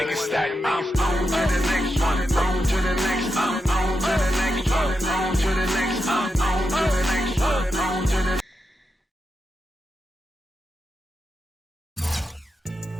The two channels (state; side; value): normal; both; correlation 0.87